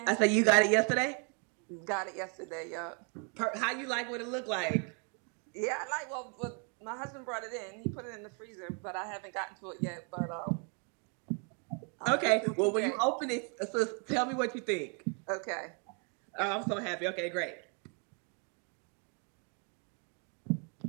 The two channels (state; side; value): quieter; left; 36.3 dB